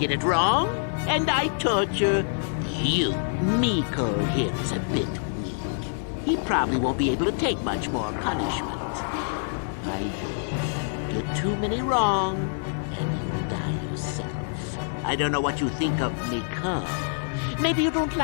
it wrong, and I torture you. Miko here is a bit weak. He probably won't be able to take much more punishment. I get too many wrong, and you die yourself. I don't know what you think of Miko. Maybe you don't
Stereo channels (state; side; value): silent; right; digital silence